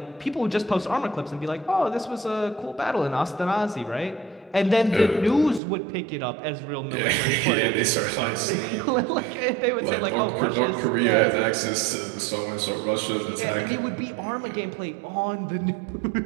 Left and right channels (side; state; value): left; drops out; at 5.6 s